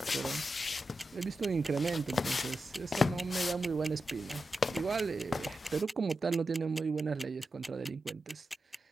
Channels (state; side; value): normal; both; correlation 0.90